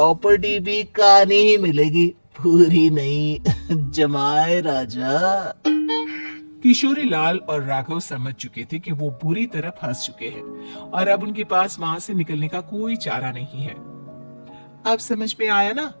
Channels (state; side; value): inverted; both; correlation -1.00